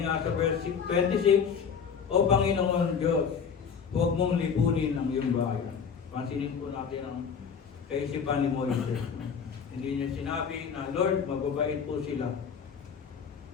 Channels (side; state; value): right; quieter; 6.6 dB